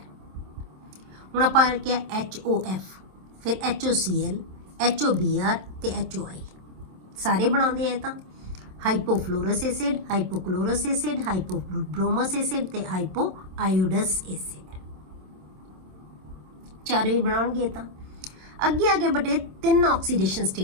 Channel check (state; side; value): late; left; 27 ms